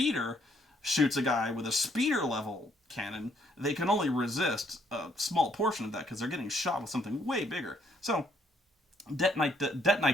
shoots a guy with a speeder level cannon, they can only resist a small portion of that because they're getting shot with something way bigger. So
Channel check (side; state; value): both; normal; correlation 0.69